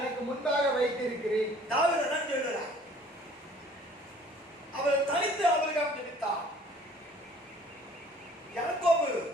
முன்பாக வைத்திருக்கிறேன். தாவீது தான் சொல்றார். அவர் தனித்து ஆபிரகாம் ஜெபித்தார். யாக்கோபு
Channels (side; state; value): both; normal; correlation 0.54